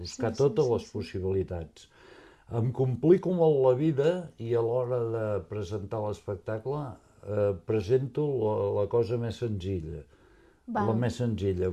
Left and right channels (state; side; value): identical; both; correlation 1.00